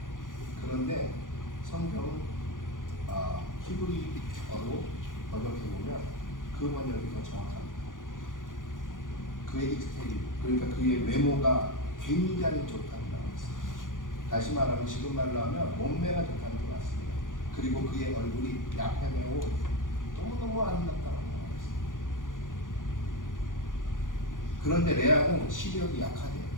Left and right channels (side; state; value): right; late; 0.88 ms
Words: 그런데 성경은 히브리어로 번역해보면 그 번역이 더 정확합니다. 그의 익스테리, 그러니까 그의 외모가 굉장히 좋다고 나와 있습니다. 다시 말하면 지금 말로 하면 몸매가 좋다는 게 맞습니다. 그리고 그의 얼굴이 야패매고 너무너무 아름답다고 나와 있습니다. 그런데 레아는 시력이 약하대요.